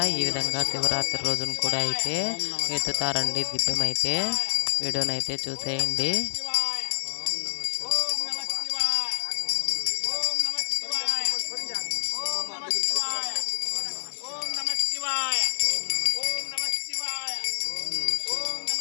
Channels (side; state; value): right; silent; digital silence